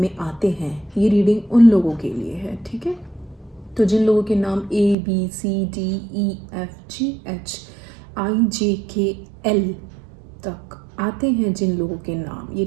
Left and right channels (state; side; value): drops out; left; at 5.0 s